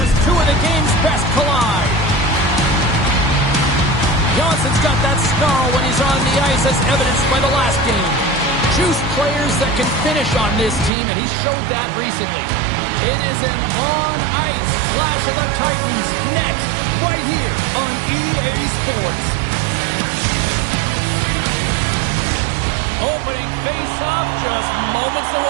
two of the game's best collide. Johnson's got that snarl when he's on the ice, as evidenced by the last game. Juice players that can finish on this team, and he showed that recently. It is an on-ice Clash of the Titans next, right here on EA Sports. Opening face-off just moments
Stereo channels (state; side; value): drops out; left; at 10.9 s